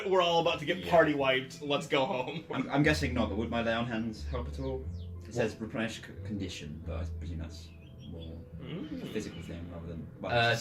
We're all about to get party wiped. Let's go home. I'm guessing not, but would my lay on hands help at all? It says replenish condition, but I presume that's more a physical thing rather than.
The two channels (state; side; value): identical; both; correlation 1.00